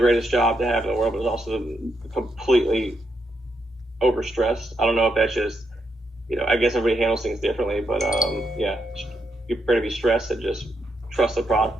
job to have in the world, but it's also completely overstressed. I don't know if that's just I guess everybody handles things differently, but yeah, you're prepared to be stressed and just trust the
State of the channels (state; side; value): normal; both; correlation 0.80